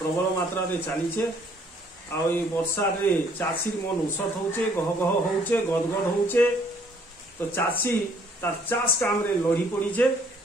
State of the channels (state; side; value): normal; both; correlation 0.62